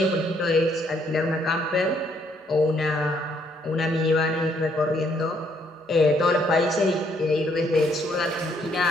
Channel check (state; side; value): normal; both; correlation 0.69